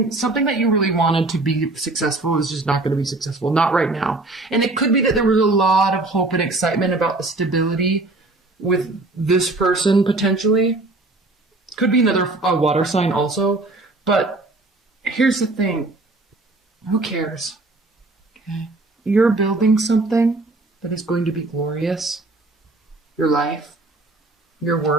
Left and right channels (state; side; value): quieter; left; 3.0 dB